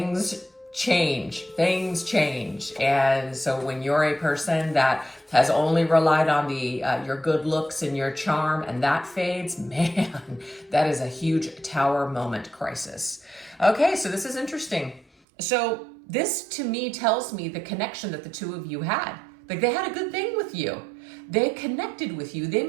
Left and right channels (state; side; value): drops out; left; at 15.1 s